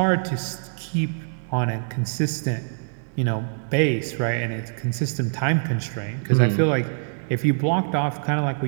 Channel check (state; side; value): silent; left; 62 dB below the other